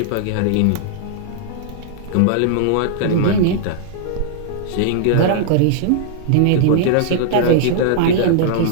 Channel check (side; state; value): both; different; correlation -0.01